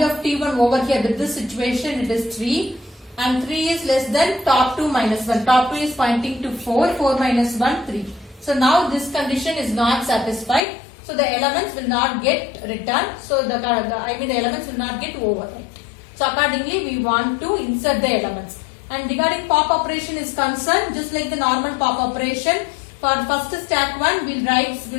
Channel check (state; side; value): drops out; right; at 10.6 s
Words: of T1 over here with this situation, it is 3, and 3 is less than top 2 minus 1. Top 2 is pointing to 4, 4 minus 1, 3. So now this condition is not satisfied. So the elements will not get returned. So the elements will not get overwritten. So accordingly we want to insert the elements. And regarding pop operation is concerned, just like the normal pop operation, for first stack 1